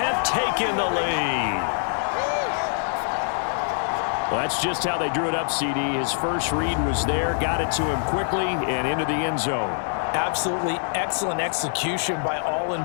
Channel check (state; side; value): silent; right; digital silence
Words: taken the lead. Well, that's just how they drew it up, CD. His first read was there, got it to him quickly, and into the end zone. Absolutely excellent execution by all